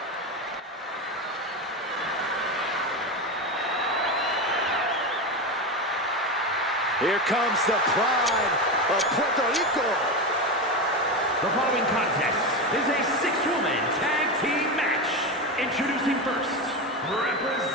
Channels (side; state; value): both; normal; correlation 0.18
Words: Here comes the pride of Puerto Rico. The following contest is a 6-woman tag team match. Introducing first,